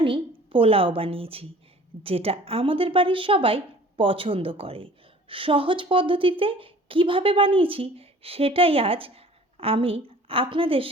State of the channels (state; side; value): normal; both; correlation 0.48